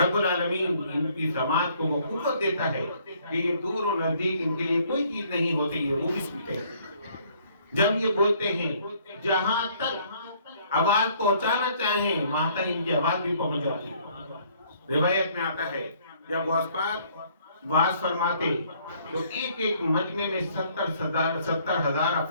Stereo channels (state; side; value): inverted; both; correlation -0.62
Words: العالمین ان کی سماعت کو وہ قوت دیتا ہے کہ یہ دور و نزدیک ان کے لیے کوئی چیز نہیں ہوتی ہے، وہ بھی سنتے ہیں. جب یہ بولتے ہیں جہاں تک آواز پہنچانا چاہیں وہاں تک ان کی آواز بھی پہنچ جاتی ہے. روایت میں آتا ہے جب غوث پاک واز فرماتے تو ایک ایک مجمع میں 70,000